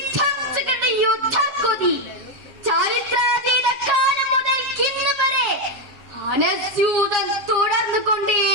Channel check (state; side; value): late; left; 7.3 ms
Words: യുദ്ധക്കൊതി ചരിത്രാതീത കാലം മുതൽ ഇന്ന് വരെ അനസ്യൂതം തുടർന്നു